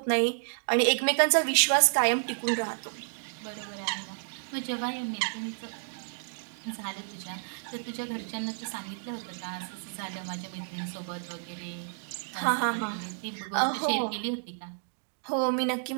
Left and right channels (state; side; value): silent; left; digital silence